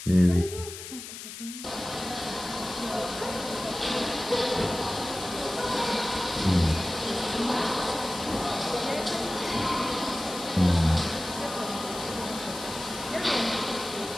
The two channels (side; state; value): left; noise; hiss, 11 dB below the sound